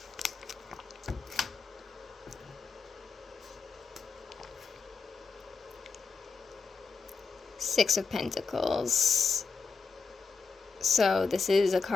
Six of Pentacles. So this is a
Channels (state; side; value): quieter; right; 4.9 dB